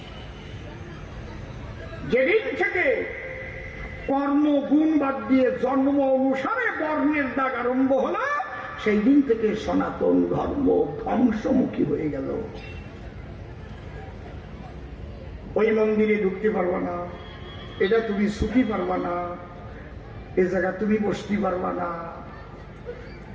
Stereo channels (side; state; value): both; identical; correlation 1.00